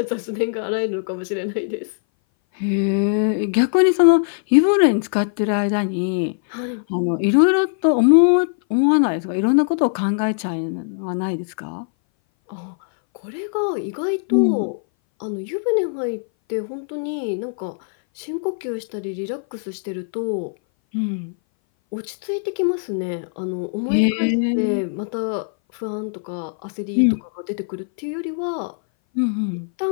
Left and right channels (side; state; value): right; silent; 60 dB below the other